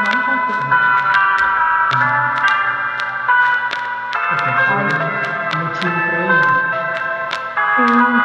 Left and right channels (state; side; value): identical; both; correlation 1.00